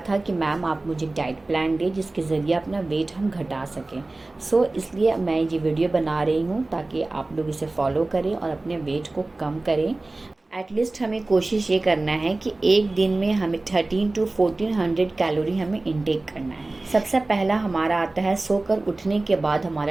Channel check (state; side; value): quieter; left; 3.0 dB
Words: था कि मैम आप मुझे डाइट प्लान दें जिसके ज़रिए अपना वेट हम घटा सकें। इसलिए मैं ये वीडियो बना रही हूँ ताकि आप लोग इसे फॉलो करें और अपने वेट को कम करें। एटलीस्ट हमें कोशिश ये करना है कि एक दिन में हमें 13 to 1400 कैलोरी हमें इंटेक करना है। सबसे पहला हमारा आता है सोकर उठने के बाद